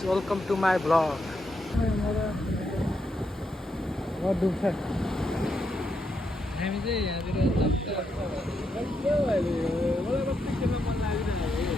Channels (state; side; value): normal; both; correlation 0.82